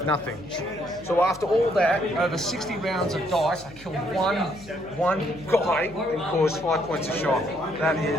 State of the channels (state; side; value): noise; left; hum, 21 dB below the sound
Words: So after all that, over 60 rounds of dice, I killed one guy and caused 5 points of shock. That